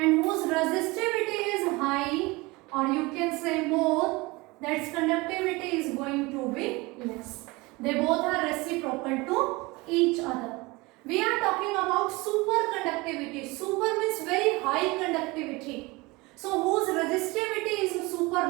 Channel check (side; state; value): left; quieter; 23.6 dB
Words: whose resistivity is high, or you can say more, that's conductivity is going to be less. They both are reciprocal to each other. We are talking about superconductivity. Super means very high conductivity. So whose resistivity is super